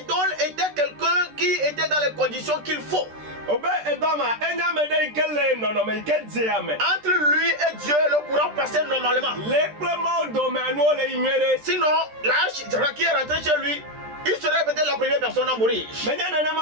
était quelqu'un qui était dans les conditions qu'il faut. Obe edoma enya me de ikele no no me ike di ame. Entre lui et Dieu, le courant passait normalement. Le plema o do me anu o le inwere. Sinon, l'arche qui est rentré chez lui, il serait peut-être la première personne à mourir. Menya nene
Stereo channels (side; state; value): left; late; 13 ms